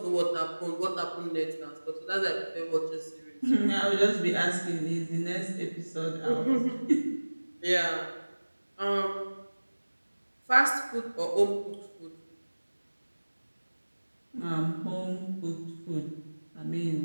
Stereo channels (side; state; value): both; inverted; correlation -1.00